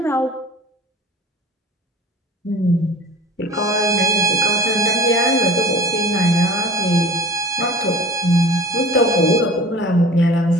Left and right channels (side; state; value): both; normal; correlation 0.40